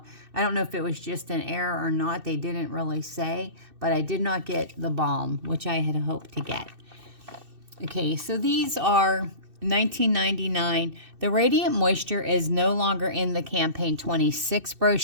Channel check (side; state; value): left; late; 2.6 ms